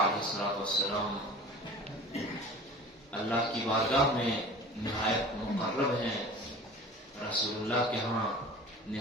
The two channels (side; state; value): both; normal; correlation 0.40